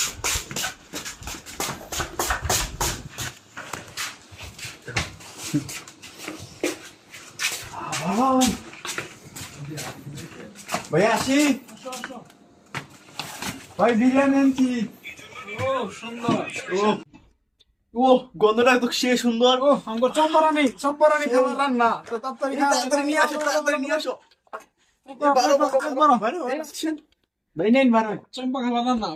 ভাই আসি, ভাই বিরিয়ানি আনছি। ও সুন্দর। ও গন্ধটা তো সে সুন্দর। ও আমগো চম্পরানি খাবার রান্না তো তাড়াতাড়ি এই তাড়াতাড়ি নিয়ে আসো, তাড়াতাড়ি নিয়ে আসো। ভাই নেন বারো। চম্পা খাবার রান্না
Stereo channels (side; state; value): both; identical; correlation 1.00